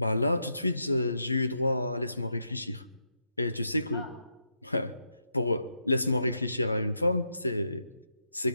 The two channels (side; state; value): both; inverted; correlation -0.82